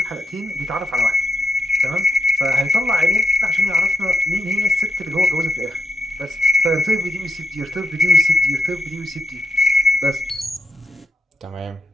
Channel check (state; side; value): normal; both; correlation 0.83